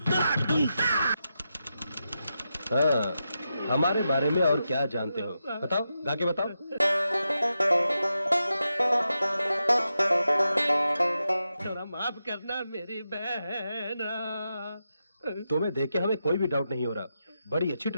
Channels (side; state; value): both; inverted; correlation -0.88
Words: हाँ, हमारे बारे में और क्या जानते हो? बताओ, गा के बताओ। थोड़ा माफ करना मेरी बहन। तुम्हें देख के हमें कोई भी डाउट नहीं हो रहा। बड़ी अच्छी